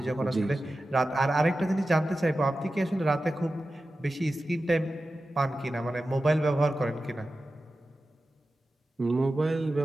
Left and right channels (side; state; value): both; normal; correlation 0.94